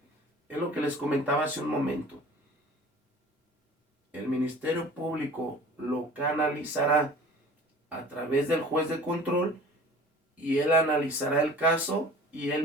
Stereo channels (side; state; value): both; normal; correlation 0.44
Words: Es lo que les comentaba hace un momento. El Ministerio Público lo canalizará a través del juez de control y él analizará el caso y